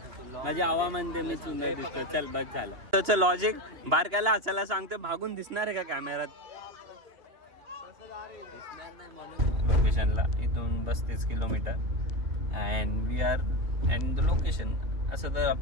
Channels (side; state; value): left; late; 2.8 ms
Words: तू माझी आवा म्हणते मी सुंदर दिसतो. चल बस झालं. त्याचं लॉजिक बारक्याला हसायला सांगते भागून दिसणार आहे का कॅमेरात. दिसणार नाही म्हणून. लोकेशनला इथून 35 kilometre and we are and the location. असं तर